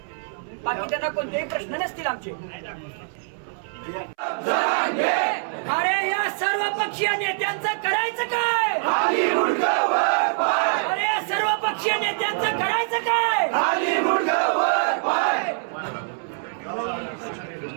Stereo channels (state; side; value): silent; left; 62 dB below the other